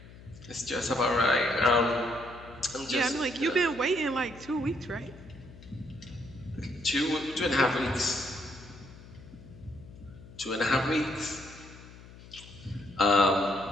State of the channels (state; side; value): noise; left; hum, 18 dB below the sound